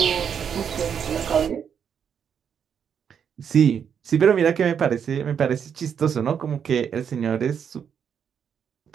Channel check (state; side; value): quieter; left; 7.7 dB